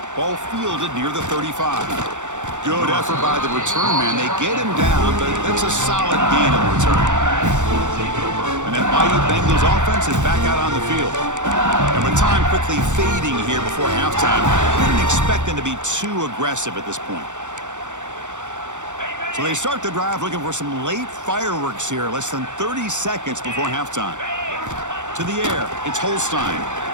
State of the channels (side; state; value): left; late; 0.85 ms